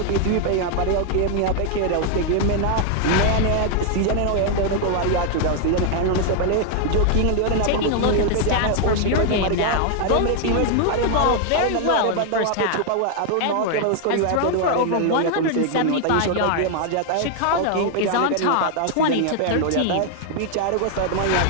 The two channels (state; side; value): different; both; correlation 0.00